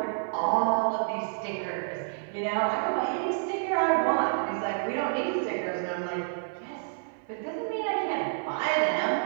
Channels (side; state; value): left; silent; 58 dB below the other